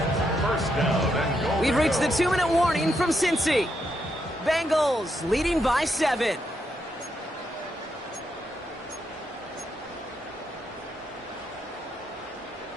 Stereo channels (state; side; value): normal; both; correlation 0.80